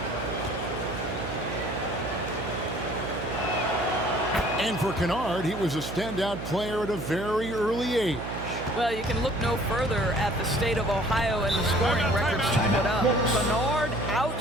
And for Kennard, he was a standout player at a very early age. Well, you can look no further at the state of Ohio and the scoring records he put up. Kennard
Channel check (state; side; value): noise; right; hum, 8 dB below the sound